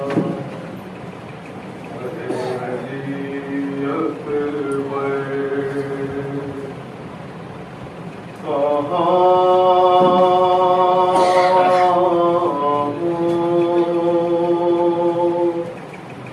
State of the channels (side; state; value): both; identical; correlation 1.00